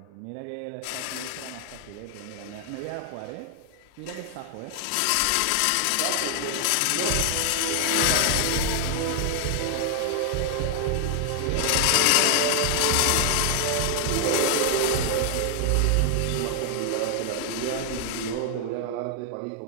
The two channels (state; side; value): different; both; correlation 0.00